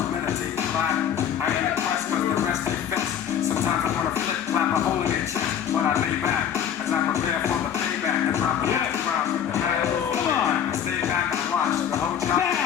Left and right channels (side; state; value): right; quieter; 9.0 dB